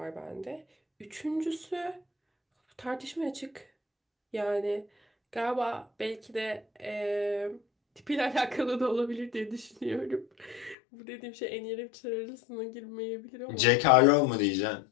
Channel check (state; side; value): drops out; right; at 10.8 s